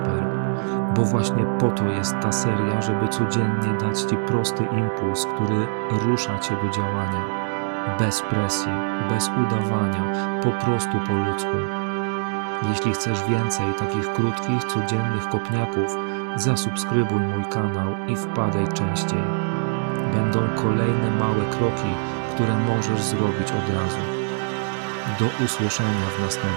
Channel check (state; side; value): silent; left; digital silence